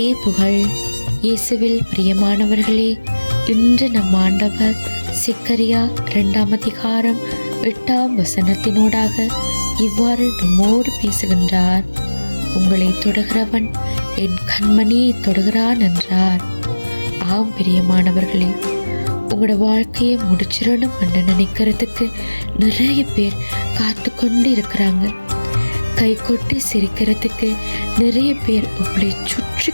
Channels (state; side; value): inverted; both; correlation -1.00